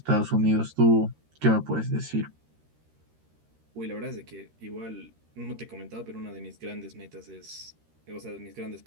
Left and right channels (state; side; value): late; left; 13 ms